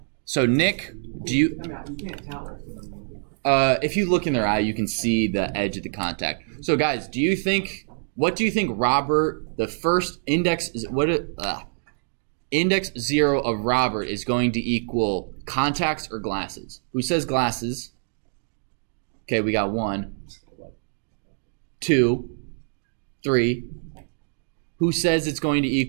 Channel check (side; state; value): left; silent; digital silence